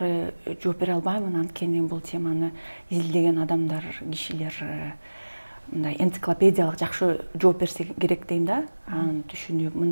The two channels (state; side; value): inverted; both; correlation -1.00